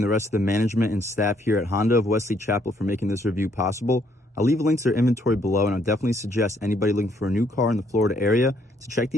the rest of the management and staff here at Honda of Wesley Chapel for making this review possible. I'll leave links to their inventory below, and I'll definitely suggest anybody looking for a new car in the Florida area to check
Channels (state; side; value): normal; both; correlation 0.69